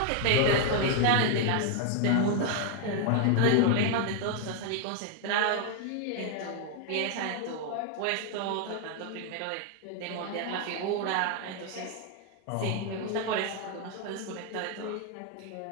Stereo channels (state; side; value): different; both; correlation 0.00